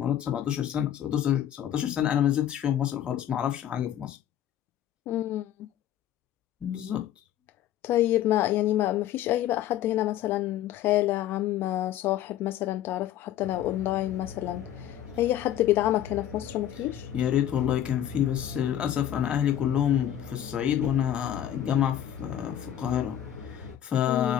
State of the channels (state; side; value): quieter; right; 11.2 dB